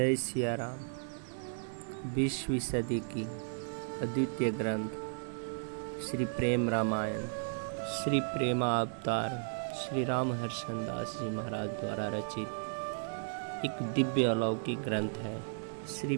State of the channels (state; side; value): silent; left; 55 dB below the other